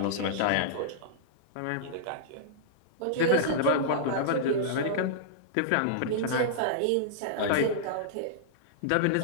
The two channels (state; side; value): different; both; correlation -0.02